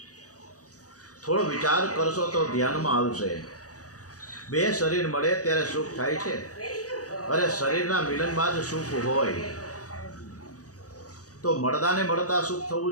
થોડો વિચાર કરશો તો ધ્યાનમાં આવશે। બે શરીર મળે ત્યારે સુખ થાય છે। અરે શરીરના મિલનમાં જ સુખ હોય તો મળદાને મળતા સુખ થવું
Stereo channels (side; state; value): right; late; 0.67 ms